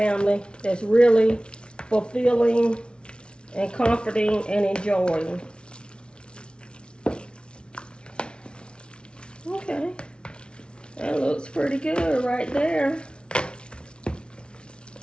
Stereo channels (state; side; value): late; right; 0.057 ms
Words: that's really fulfilling and comforting and enjoying. Okay. That looks pretty good right there. I